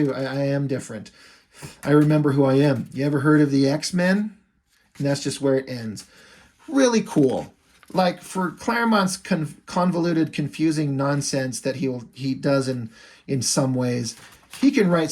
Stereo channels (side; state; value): both; identical; correlation 1.00